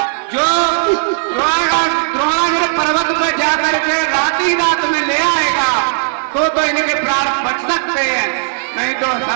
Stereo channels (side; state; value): left; silent; digital silence